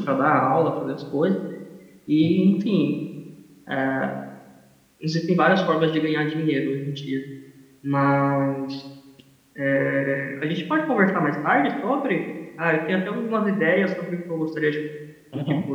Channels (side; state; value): both; identical; correlation 1.00